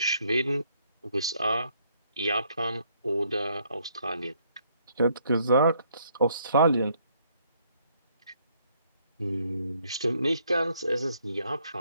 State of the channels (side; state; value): both; inverted; correlation -0.69